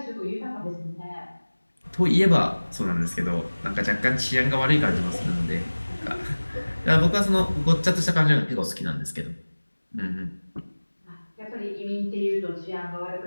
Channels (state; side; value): inverted; both; correlation -1.00